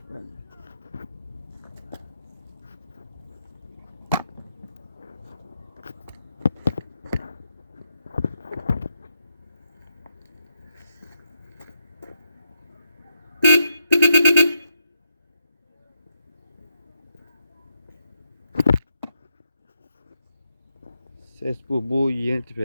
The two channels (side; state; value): both; inverted; correlation -0.81